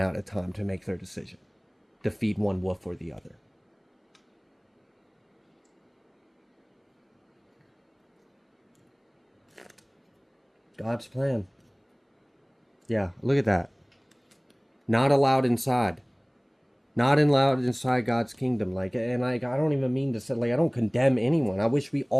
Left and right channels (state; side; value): identical; both; correlation 1.00